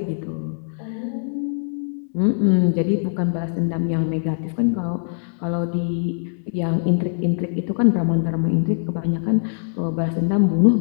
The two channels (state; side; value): silent; right; digital silence